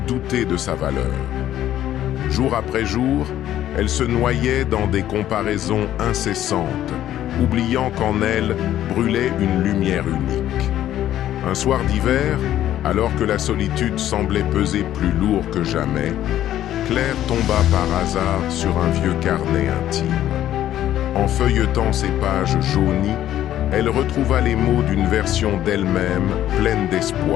de sa valeur. Jour après jour, elle se noyait dans des comparaisons incessantes, oubliant qu'en elle brûlait une lumière unique. Un soir d'hiver, alors que la solitude semblait peser plus lourd que jamais, Claire tomba par hasard sur un vieux carnet intime. En feuilletant ses pages jaunies, elle retrouva les mots d'une version d'elle-même pleine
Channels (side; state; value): right; quieter; 12.3 dB